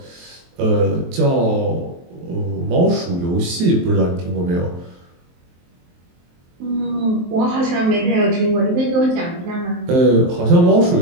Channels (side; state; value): left; late; 23 ms